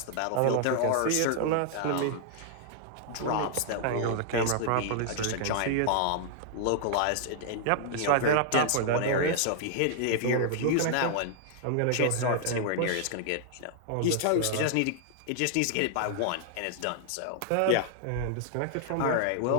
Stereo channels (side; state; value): both; different; correlation -0.01